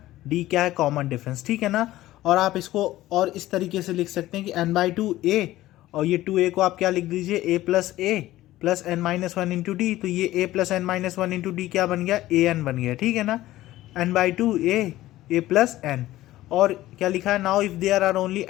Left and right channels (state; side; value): quieter; right; 15.7 dB